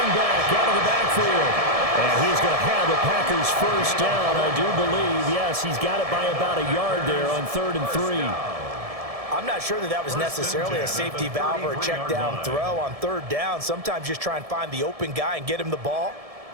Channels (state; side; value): late; left; 1.7 ms